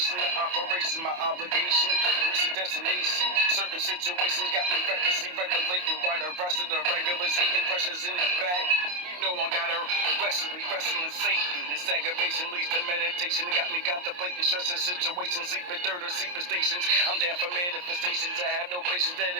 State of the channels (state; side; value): late; left; 28 ms